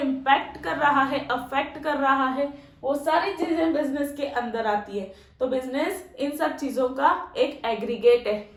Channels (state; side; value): identical; both; correlation 1.00